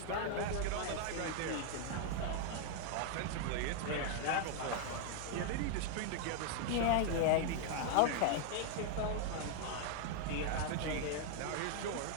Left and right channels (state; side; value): different; both; correlation 0.00